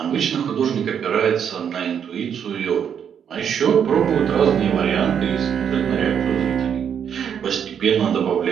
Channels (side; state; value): left; quieter; 8.1 dB